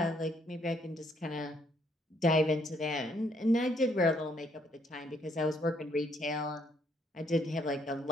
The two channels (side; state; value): both; normal; correlation 0.70